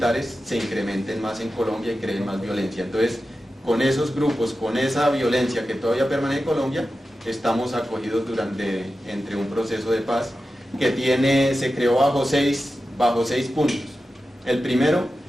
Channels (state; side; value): normal; both; correlation 0.92